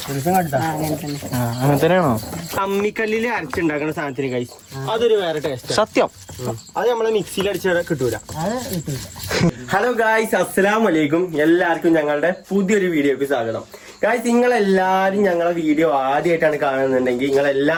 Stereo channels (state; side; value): identical; both; correlation 1.00